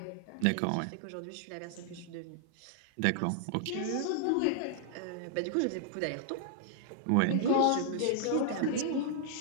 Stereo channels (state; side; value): different; both; correlation -0.01